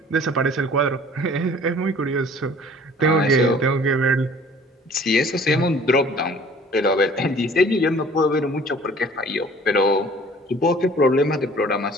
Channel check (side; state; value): both; normal; correlation 0.51